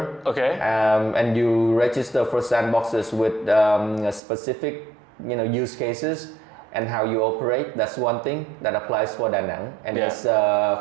Okay. And you register for sandboxes with specific use cases and how you operate. That's one thing that applies for Da Nang, and it's a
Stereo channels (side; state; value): left; drops out; at 4.2 s